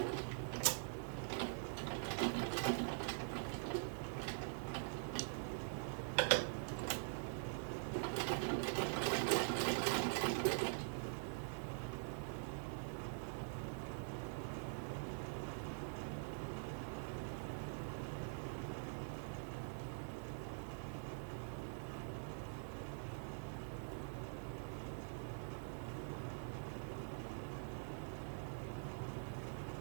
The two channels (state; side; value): silent; left; digital silence